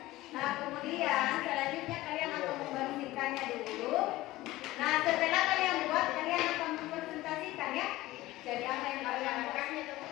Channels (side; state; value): right; quieter; 17.5 dB